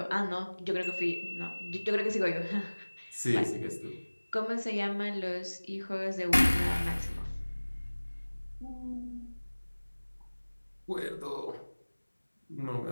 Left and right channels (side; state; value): both; inverted; correlation -1.00